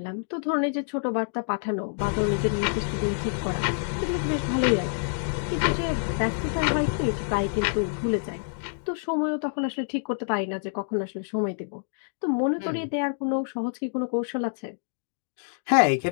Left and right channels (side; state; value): right; silent; digital silence